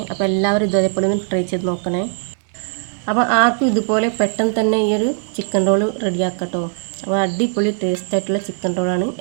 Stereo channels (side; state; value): left; silent; 66 dB below the other